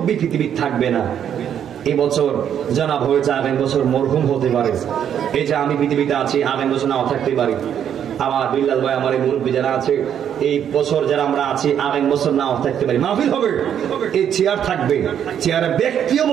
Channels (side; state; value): left; quieter; 9.2 dB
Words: পৃথিবী থাকবে না। এই বছর জানাব হয়েছে, আগামী বছর মরহুম হতে পারে। এই যে আমি পৃথিবীতে আছি, আগামী বছর নাও থাকতে পারি। আমার বিল্লাল ভাই, আমার এই মুরব্বী যারা আছে, এই বছর যারা আমরা আছি, আগামী বছর নাও থাকতে পারি। মাহফিল হবে, এই চেয়ার থাকবে, চেয়ারে ব্যক্তিও